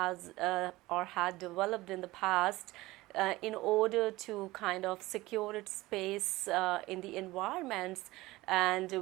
or had developed in the past in order to kind of secure its space in the environments, and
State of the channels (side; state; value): left; quieter; 19.2 dB